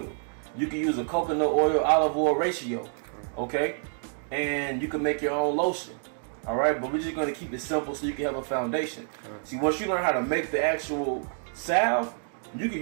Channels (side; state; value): left; silent; digital silence